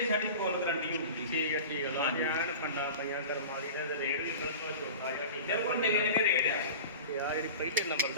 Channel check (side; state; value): both; inverted; correlation -0.34